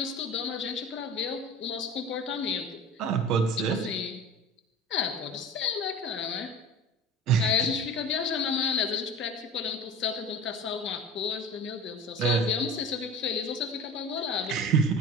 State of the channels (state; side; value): normal; both; correlation 0.36